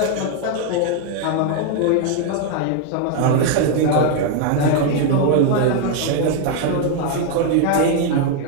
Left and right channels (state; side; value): different; both; correlation 0.00